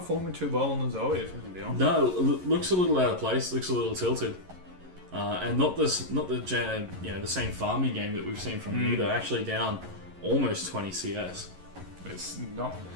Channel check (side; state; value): left; late; 11 ms